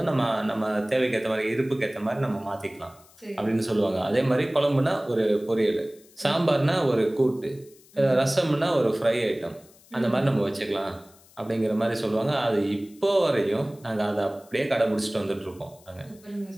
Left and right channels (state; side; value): noise; left; hiss, 27 dB below the sound